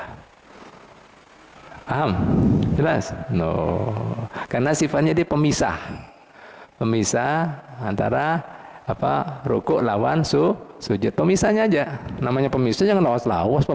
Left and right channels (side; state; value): both; identical; correlation 1.00